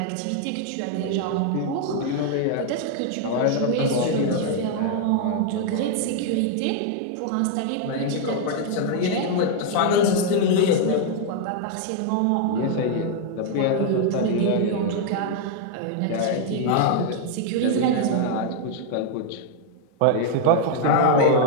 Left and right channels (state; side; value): different; both; correlation 0.00